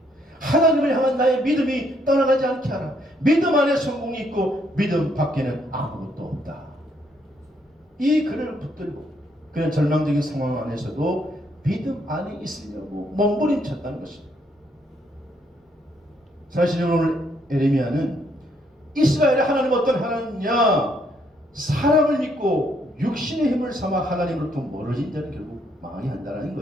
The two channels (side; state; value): both; normal; correlation 0.71